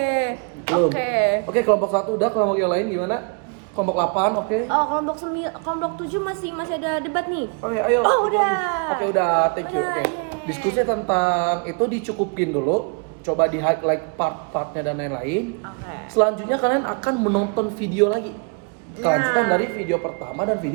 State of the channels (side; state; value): left; quieter; 36.8 dB